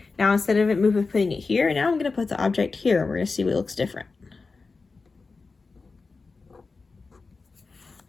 now instead of putting it here, now I'm going to put the object here, and we're going to see what looks different.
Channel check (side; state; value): right; quieter; 4.2 dB